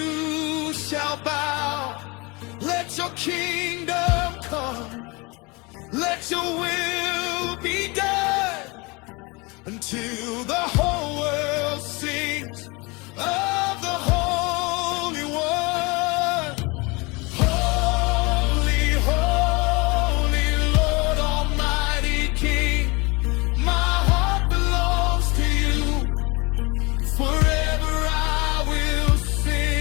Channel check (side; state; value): right; quieter; 26.6 dB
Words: shall bow. Let your kingdom come, let your will be done until the